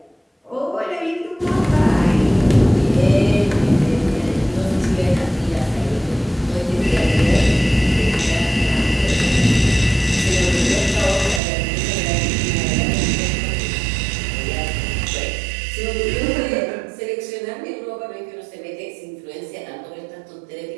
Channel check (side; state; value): left; drops out; at 11.4 s